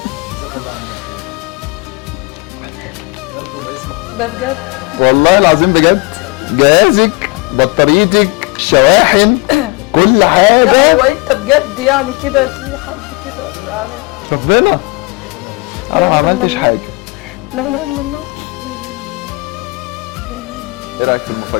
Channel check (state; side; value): quieter; right; 26.6 dB